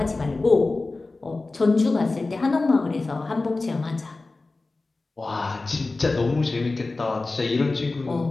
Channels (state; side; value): quieter; right; 3.4 dB